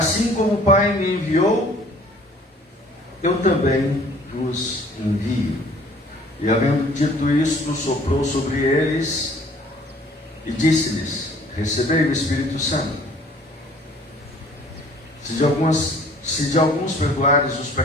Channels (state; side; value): normal; both; correlation 0.54